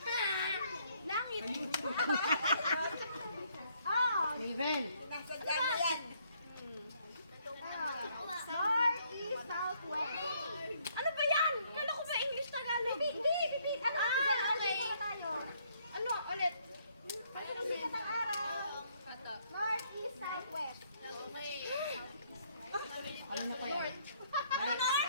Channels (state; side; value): inverted; both; correlation -0.68